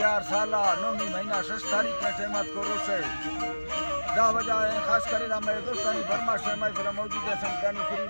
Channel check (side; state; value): both; inverted; correlation -1.00